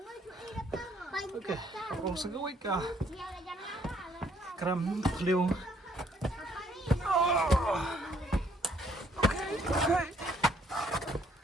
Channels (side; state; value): both; normal; correlation 0.66